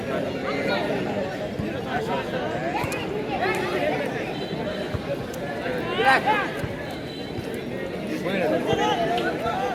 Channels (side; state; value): both; identical; correlation 1.00